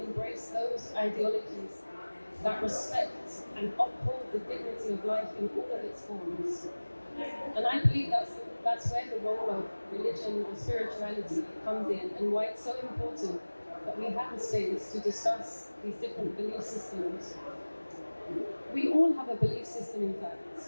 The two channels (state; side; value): inverted; both; correlation -1.00